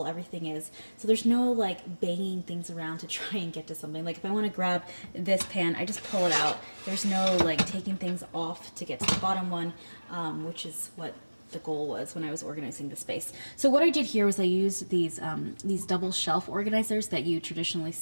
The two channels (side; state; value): both; inverted; correlation -1.00